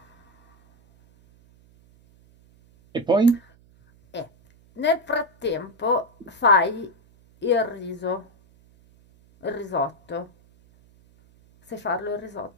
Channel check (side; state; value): right; noise; hum, 29 dB below the sound